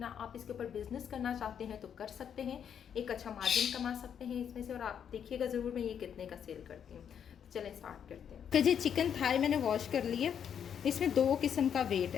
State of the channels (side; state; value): right; quieter; 8.3 dB